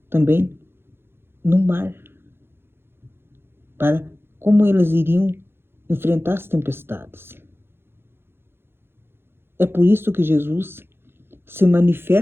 também no mar, para como eles iriam enfrentar as tempestades. É por isso que Jesus se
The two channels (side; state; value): left; late; 0.11 ms